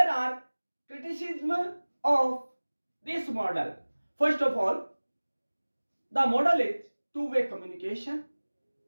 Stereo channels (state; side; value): inverted; both; correlation -1.00